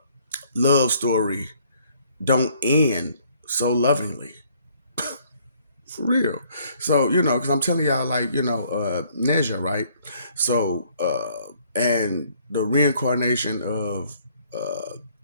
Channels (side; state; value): both; inverted; correlation -0.63